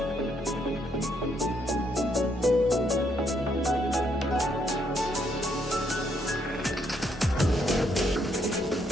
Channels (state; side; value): normal; both; correlation 0.73